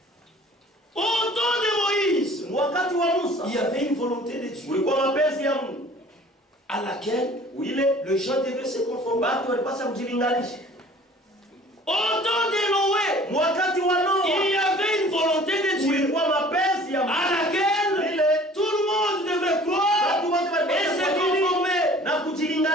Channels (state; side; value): normal; both; correlation 0.49